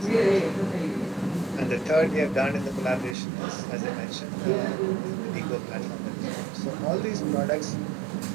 And the third we have done in the collaboration is, as I mentioned, the Vigo platform. So all these products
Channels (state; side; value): drops out; left; at 3.2 s